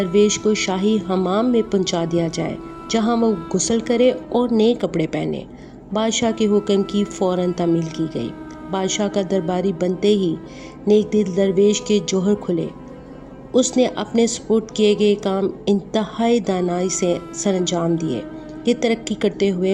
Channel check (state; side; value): identical; both; correlation 1.00